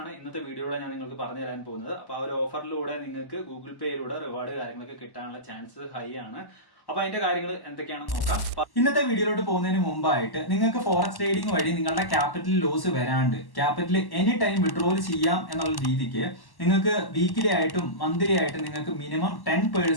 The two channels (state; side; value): late; right; 1.1 ms